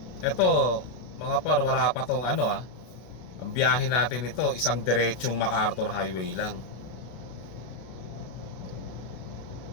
Eto mga par, wala pa tong ang biyahe natin ito isang diretsong MacArthur Highway lang.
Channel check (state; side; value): late; right; 32 ms